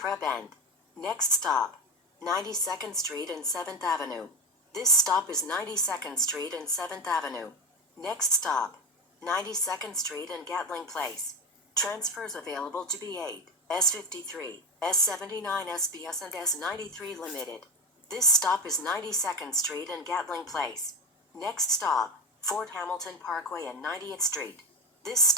End. Next stop, 92nd Street and 7th Avenue. This stop is 92nd Street and 7th Avenue. Next stop, 92nd Street and Gatling Place. Transfers available to B8, S53, S79 SBS and S93 Limited. This stop is 92nd Street and Gatling Place. Next stop, Fort Hamilton Parkway and 90th Street. This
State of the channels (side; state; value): both; normal; correlation 0.19